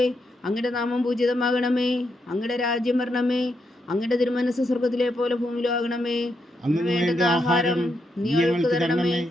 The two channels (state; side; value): normal; both; correlation 0.81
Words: അങ്ങയുടെ നാമം പൂജിതമാകണമേ. അങ്ങയുടെ രാജ്യം വരണമേ. അങ്ങയുടെ തിരുമനസ് സ്വർഗത്തിലെ പോലെ ഭൂമിയിലും ആകണമേ. അന്ന് വേണ്ടുന്ന ആഹാരം നീ ഞങ്ങൾക്ക് തരണമേ.